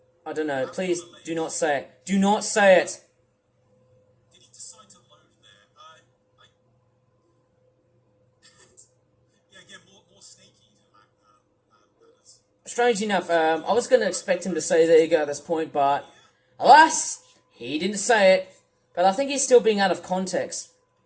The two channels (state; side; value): identical; both; correlation 1.00